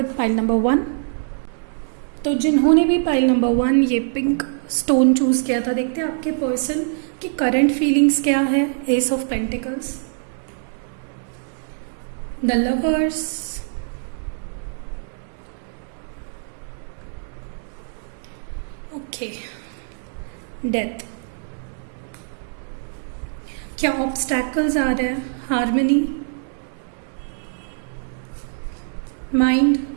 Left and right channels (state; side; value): silent; left; digital silence